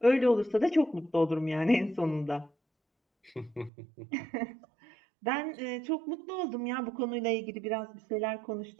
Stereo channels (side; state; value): left; drops out; at 3.7 s